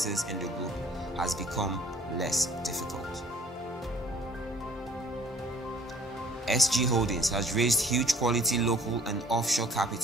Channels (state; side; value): normal; both; correlation 0.55